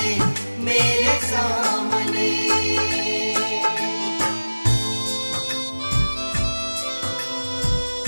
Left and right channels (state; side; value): inverted; both; correlation -1.00